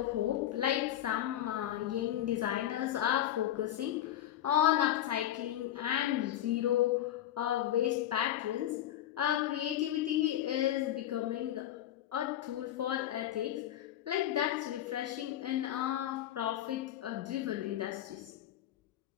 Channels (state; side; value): quieter; right; 12.2 dB